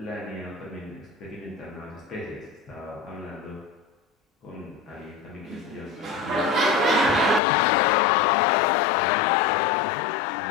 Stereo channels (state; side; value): drops out; right; at 7.4 s